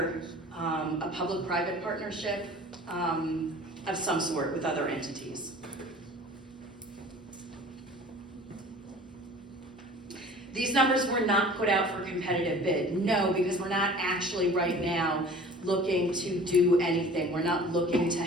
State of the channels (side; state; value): both; normal; correlation 0.45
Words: a public-private partnership of some sort with other entities. These numbers were not put out for competitive bid, no, because we're not actually right now looking to do anything. We're not looking to